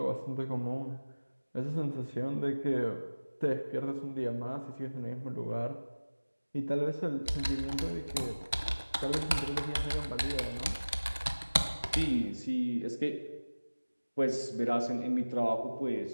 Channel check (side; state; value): both; inverted; correlation -1.00